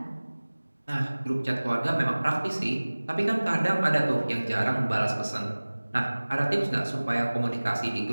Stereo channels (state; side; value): inverted; both; correlation -1.00